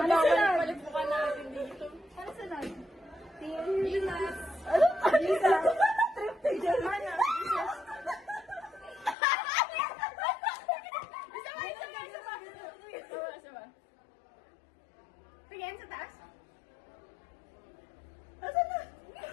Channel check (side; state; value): right; drops out; at 9.2 s